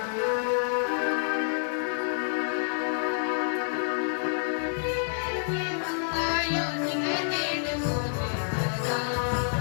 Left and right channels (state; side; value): silent; right; digital silence